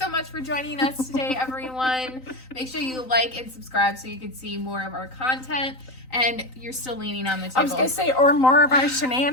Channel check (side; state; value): right; late; 3.9 ms